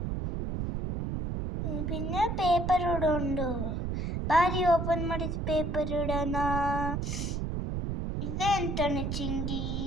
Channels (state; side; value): noise; right; rumble, 2 dB below the sound